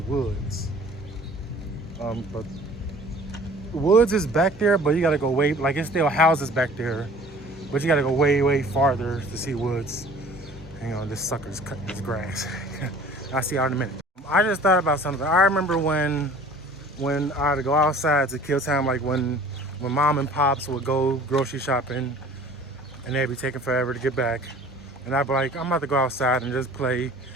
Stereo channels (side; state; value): both; normal; correlation 0.48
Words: But woods is back there, but you gotta go way, like it's still houses back there, but you gotta go way farther to see woods. Hang on, this sucker's cutting his grass. I'll see y'all in a minute. I just thought about something. I remember when I had to go outside to kill time, like when mom and pops would go grocery shopping and they'd be taking forever to get back. And I'd be like, I'm about to go outside and just play